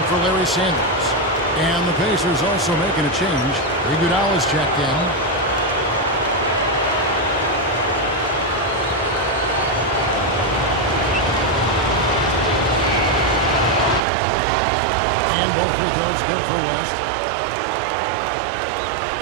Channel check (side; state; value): left; drops out; at 14.0 s